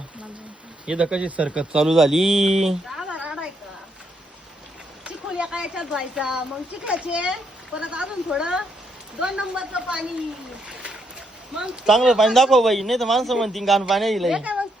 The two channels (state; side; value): normal; both; correlation 0.76